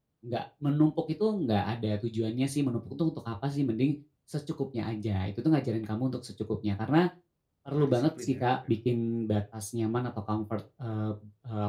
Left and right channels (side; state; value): both; identical; correlation 1.00